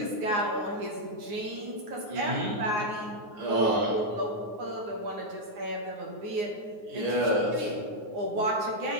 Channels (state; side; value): late; left; 9.5 ms